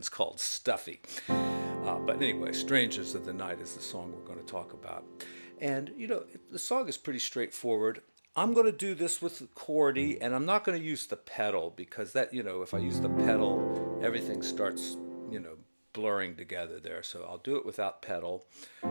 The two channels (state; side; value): inverted; both; correlation -1.00